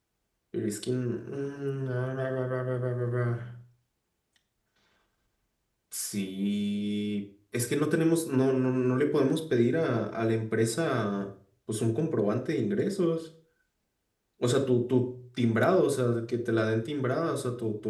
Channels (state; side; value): identical; both; correlation 1.00